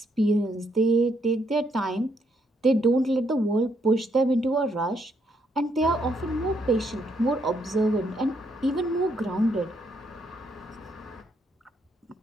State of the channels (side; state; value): both; normal; correlation 0.74